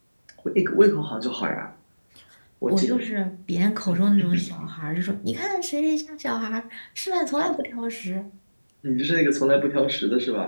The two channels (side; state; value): both; inverted; correlation -1.00